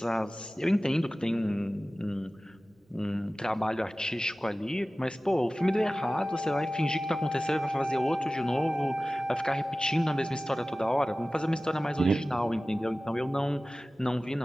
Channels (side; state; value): both; normal; correlation 0.97